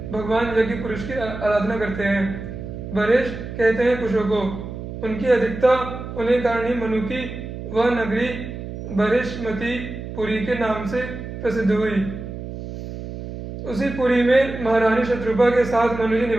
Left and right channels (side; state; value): right; noise; hum, 9 dB below the sound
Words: भगवान यज्ञ पुरुष की आराधना करते हैं। बरेश कहते हैं कुशों को। उनकी अधिकता होने कारण ही मनु की वह नगरी बृहस्पति पुरी के नाम से प्रसिद्ध हुई। उसी पुरी में महारानी शत्रुपा के साथ मनु जी